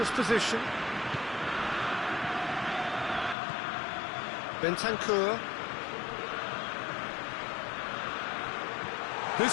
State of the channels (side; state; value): right; drops out; at 3.4 s